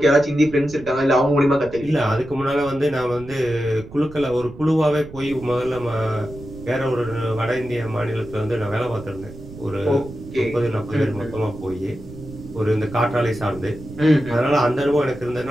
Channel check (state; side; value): noise; right; rumble, 16 dB below the sound